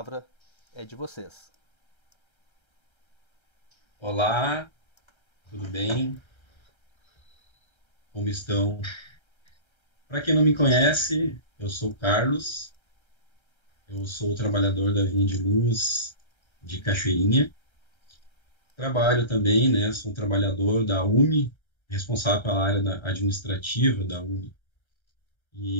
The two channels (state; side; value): late; right; 1.3 ms